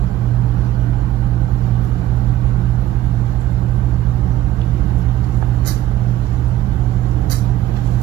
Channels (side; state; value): left; quieter; 13.8 dB